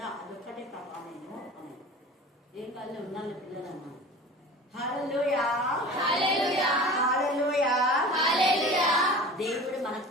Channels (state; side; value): normal; both; correlation 0.38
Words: అదొక్కటే ప్రభా నేను అన్నాను. ఏం కాదు ఉన్నాను పిల్లలు అన్నాను. హల్లెలూయా హల్లెలూయా హల్లెలూయా హల్లెలూయా. దేవుడు మనకు